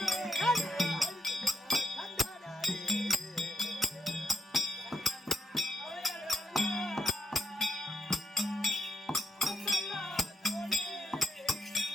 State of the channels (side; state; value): both; normal; correlation 0.80